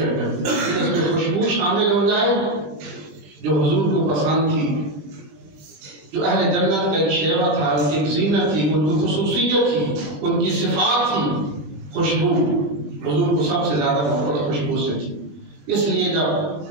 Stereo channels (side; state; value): left; late; 21 ms